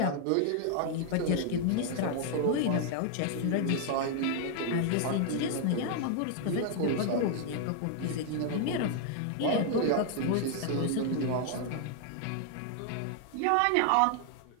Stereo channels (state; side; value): different; both; correlation 0.00